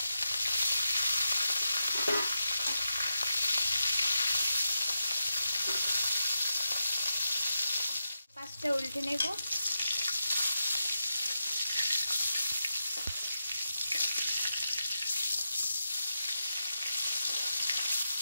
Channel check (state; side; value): inverted; both; correlation -0.88